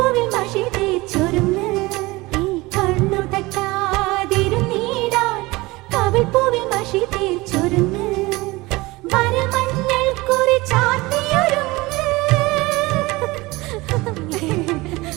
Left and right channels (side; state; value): left; quieter; 21.7 dB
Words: മഷി തേച്ചൊരുങ്ങ് കണ്ണു തട്ടാതിരുന്നീടാൻ കവിൾപ്പൂവിൽ മഷി തേച്ചൊരുങ്ങ് വരമഞ്ഞൾ കുറി ചാർത്തിയൊരുങ്ങ്